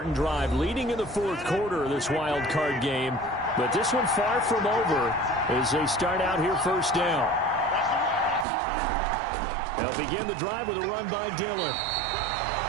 drive leading in the 4th quarter of this wild card game. But this one far from over as they start out here first down. They'll begin the drive with a run by Dillon.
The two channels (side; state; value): left; drops out; at 8.5 s